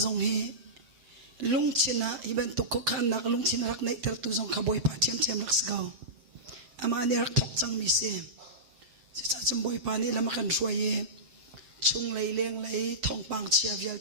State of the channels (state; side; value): late; left; 7.7 ms